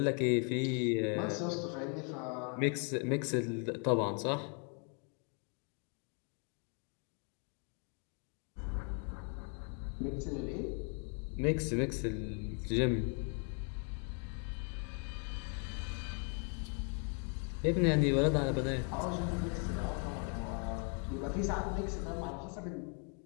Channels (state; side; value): quieter; right; 38.4 dB